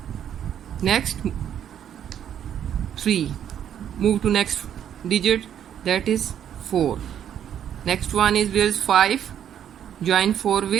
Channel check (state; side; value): quieter; left; 9.6 dB